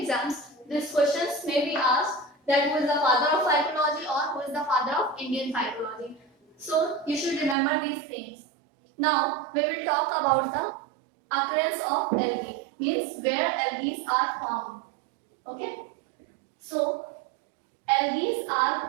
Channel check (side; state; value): left; drops out; at 7.6 s